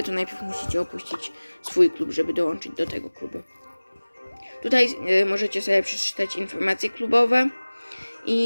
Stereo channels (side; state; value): both; inverted; correlation -1.00